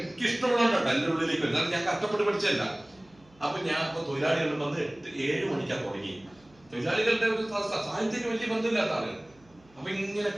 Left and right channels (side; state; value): right; noise; hum, 30 dB below the sound